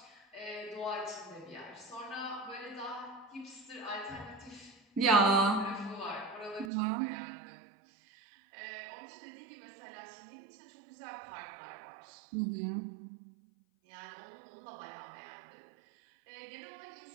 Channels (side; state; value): left; drops out; at 6.7 s